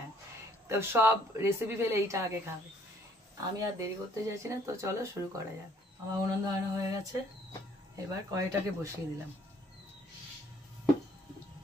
তো সব রেসিপি ফেলে এইটা আগে খাবে। আমি আর দেরি করতে চাইছি না, তো চলো শুরু করা যাক। আমার উনুন ধরানো হয়ে গেছে, এবার কড়াইটাকে বসিয়ে দিলাম।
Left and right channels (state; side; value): normal; both; correlation 0.63